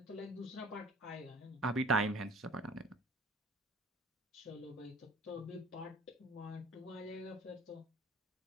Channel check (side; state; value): both; normal; correlation 0.47